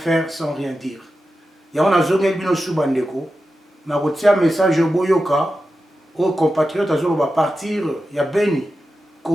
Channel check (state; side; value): normal; both; correlation 0.91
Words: sans rien dire. Il y a un azongel bino subandeko, na un message au boyoka, aux compatriotes va partir, il y a Béni.